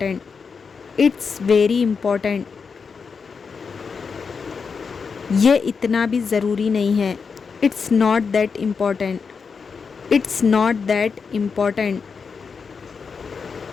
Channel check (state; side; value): quieter; right; 5.5 dB